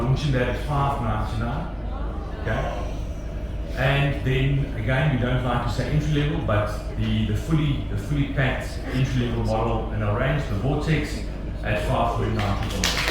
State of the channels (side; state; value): both; identical; correlation 1.00